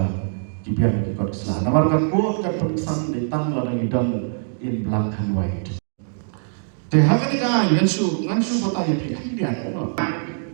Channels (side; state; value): left; silent; digital silence